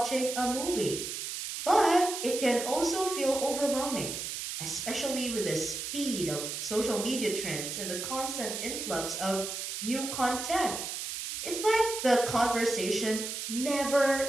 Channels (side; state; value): right; noise; hiss, 5 dB below the sound